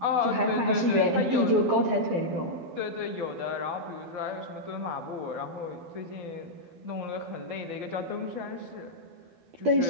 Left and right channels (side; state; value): left; late; 12 ms